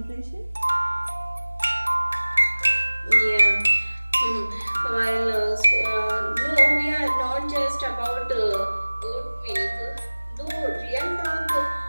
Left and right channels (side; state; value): both; inverted; correlation -1.00